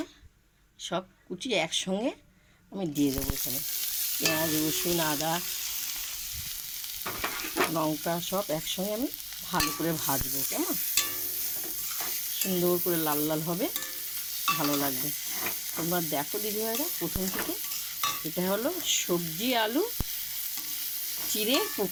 সব কুচি একসঙ্গে আমি দিয়ে দেবো এখানে। পেঁয়াজ, রসুন, আদা, লঙ্কা সব একসঙ্গে আমি ভালো করে ভাজবো, কেমন? সুন্দর করে লাল লাল হবে, ভালো লাগবে। তোমরা দেখো দিদিভাইরা প্রথম থেকে। এটা হলো সবজি আলু চিড়ে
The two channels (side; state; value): both; identical; correlation 1.00